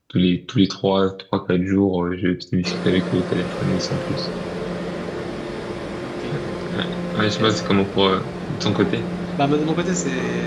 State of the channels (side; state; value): both; identical; correlation 1.00